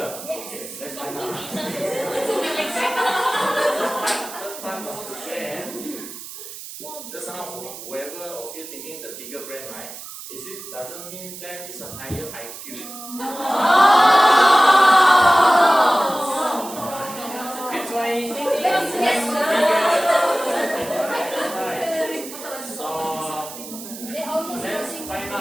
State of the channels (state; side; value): noise; right; hiss, 12 dB below the sound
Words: Okay, let's find out. The part of the brain. Just now, whoever of you thinking the bigger brain, right? Doesn't mean that it's a higher IQ. That's why. So let's find